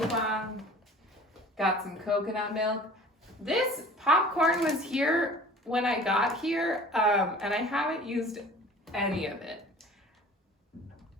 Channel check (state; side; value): normal; both; correlation 0.45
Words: Got some coconut milk. This popcorn was here when I got here, and I haven't used any of it.